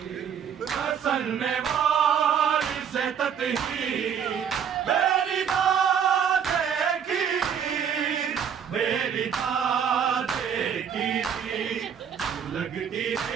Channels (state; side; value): quieter; left; 7.9 dB